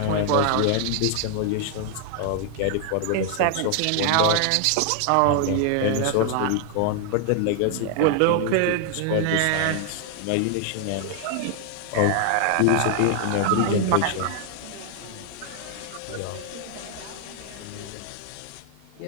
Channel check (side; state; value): both; different; correlation 0.00